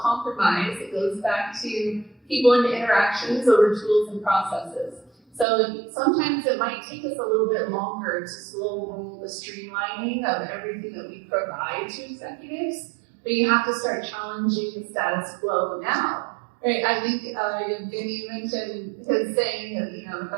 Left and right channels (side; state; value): left; drops out; at 5.5 s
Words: It goes back to people and interactions over tools and processes. So sometimes it might take us a little bit longer to slow roll the streamlining of everything that we provide to executives, but you have to start challenging the status quo now. Right? I think Evgeny mentioned his saying that the